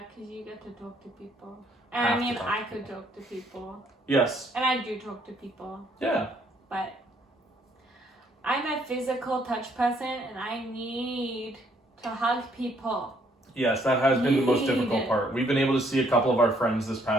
because you get to talk to people. Have And I to mean, talk I to could people. talk to people. Yes. And I do talk to people. Yeah. But I'm a physical touch person and I need to hug people. Yes, that has been the most difficult part. We've been able to see a couple of our friends this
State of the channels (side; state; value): both; normal; correlation 0.67